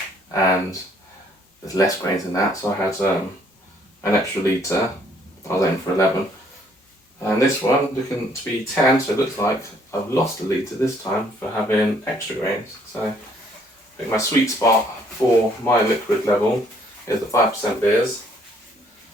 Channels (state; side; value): normal; both; correlation 0.64